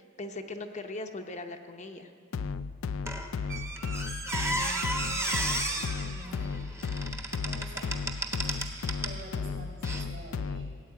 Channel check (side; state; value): both; normal; correlation 0.42